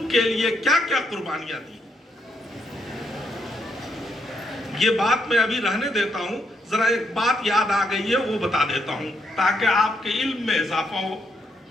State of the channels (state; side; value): normal; both; correlation 0.77